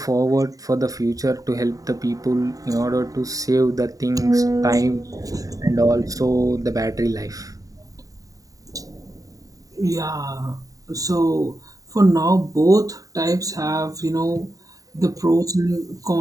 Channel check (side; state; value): left; late; 0.17 ms